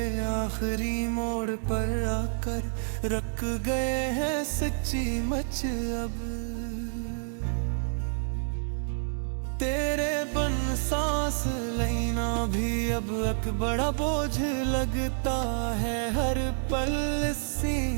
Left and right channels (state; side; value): silent; left; digital silence